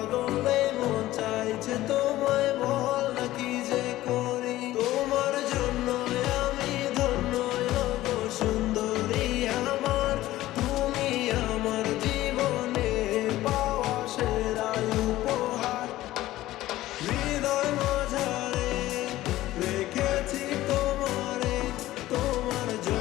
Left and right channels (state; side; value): quieter; right; 15.8 dB